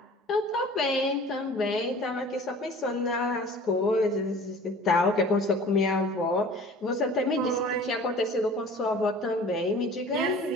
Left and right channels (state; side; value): normal; both; correlation 0.45